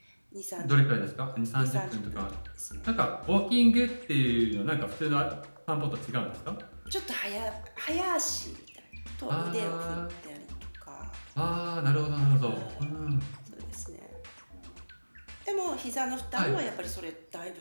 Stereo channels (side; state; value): both; inverted; correlation -1.00